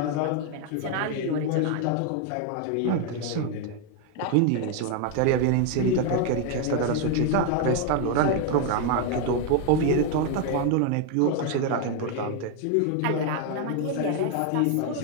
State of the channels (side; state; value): both; different; correlation 0.01